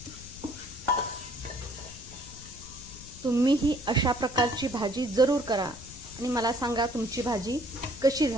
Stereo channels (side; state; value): left; noise; rumble, 17 dB below the sound